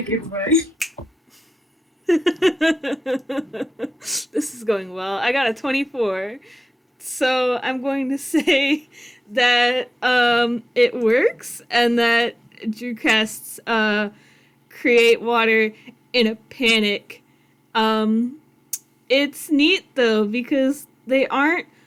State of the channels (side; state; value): both; normal; correlation 0.96